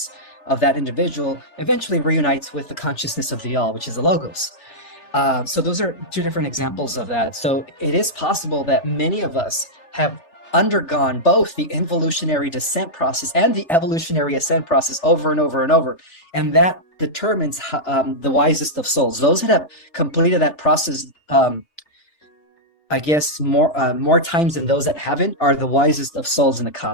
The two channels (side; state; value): right; late; 3.4 ms